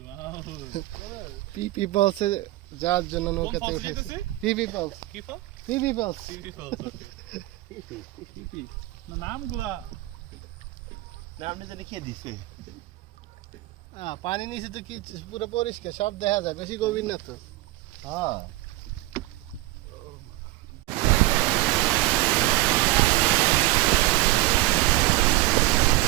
পিপি পালসে যাওয়ার জন্য নৌকাতে উঠেছি পিপি পালস কি ফল পিপি পালস পিপি ফল পিপি নামগুলা নামটা জানি কে দিছে পানি নিচে তো কি পুরো পরিষ্কার সব দেখা যায় বেশি গভীর না তো হ্যাঁ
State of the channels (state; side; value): quieter; left; 18.5 dB